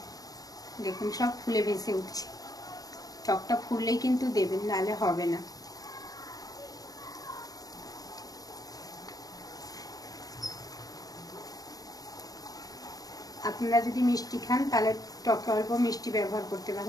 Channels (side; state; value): right; late; 0.18 ms